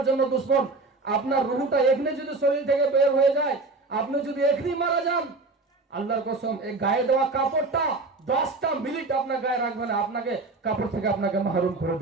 জন্য দুশ্মন। আপনার রুহটা এখানে যদি শরীর থেকে বের হয়ে যায়, আপনি যদি এখানেই মারা যান, আল্লাহর কসম এই গায়ে দেওয়া কাপড়টা 10টা মিনিট আপনার গায়ে রাখবে না, আপনাকে কাপড় থেকে আপনাকে মাহরুম করে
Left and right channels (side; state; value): left; quieter; 3.5 dB